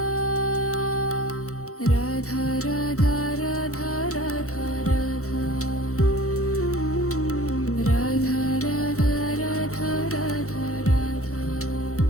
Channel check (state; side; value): late; right; 0.64 ms